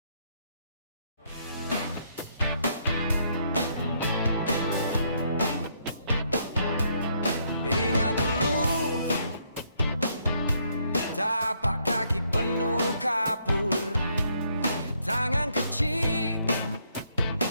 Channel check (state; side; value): inverted; both; correlation -0.72